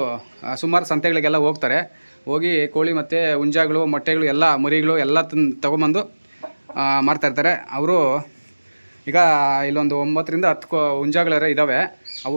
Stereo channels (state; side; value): inverted; both; correlation -1.00